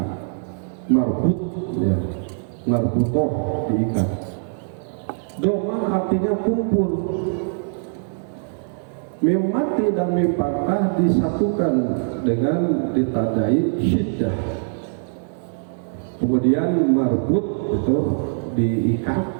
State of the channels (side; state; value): left; silent; digital silence